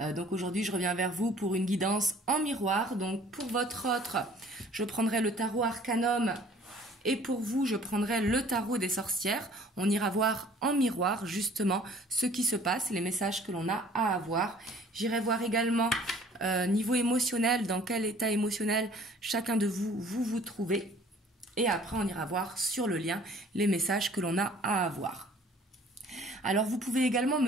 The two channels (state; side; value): normal; both; correlation 0.53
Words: Donc aujourd'hui je reviens vers vous pour une guidance en miroir. Donc pour votre autre, je prendrai le tarot Arcanum et pour vous je prendrai le tarot des sorcières. On ira voir en miroir justement ce qui se passe, les messages que l'on a à avoir. J'irai voir également niveau émotionnel, dans quel état émotionnel chacun de vous trouvez. Et après, on ira voir sur le lien les messages que l'on a à avoir. Alors, vous pouvez également